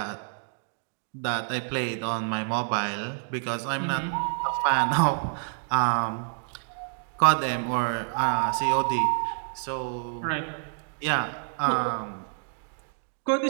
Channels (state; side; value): silent; left; digital silence